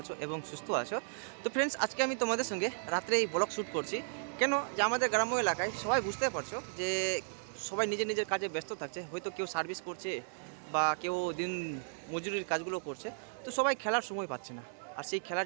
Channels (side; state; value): left; silent; digital silence